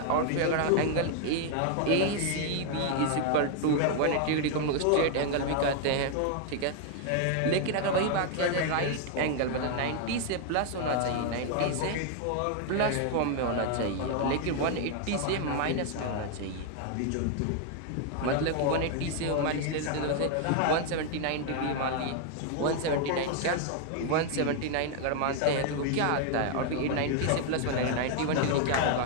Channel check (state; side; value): different; both; correlation 0.00